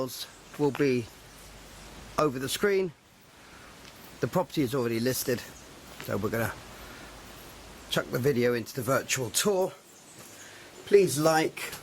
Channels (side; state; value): both; identical; correlation 1.00